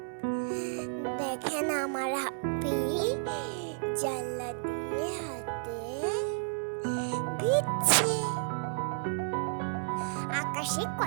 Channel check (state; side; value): silent; left; 56 dB below the other